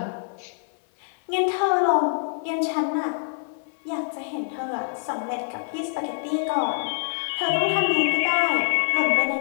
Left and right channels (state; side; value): silent; right; 59 dB below the other